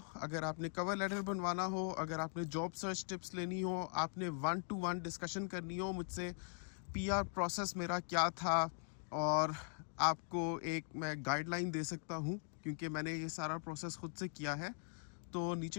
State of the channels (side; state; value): right; silent; 50 dB below the other